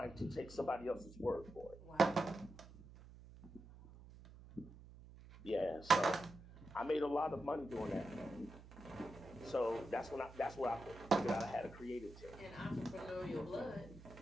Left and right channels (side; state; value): right; noise; hum, 17 dB below the sound